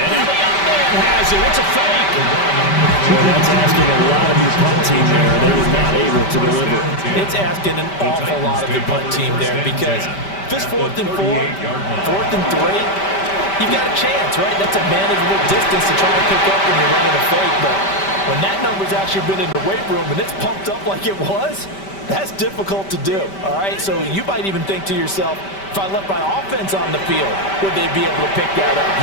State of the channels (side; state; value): right; late; 5.1 ms